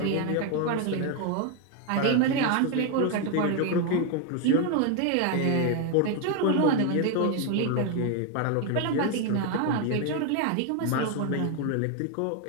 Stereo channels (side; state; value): both; different; correlation 0.01